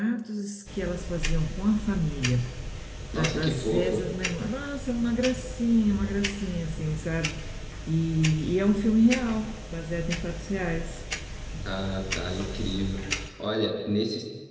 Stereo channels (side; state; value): both; identical; correlation 1.00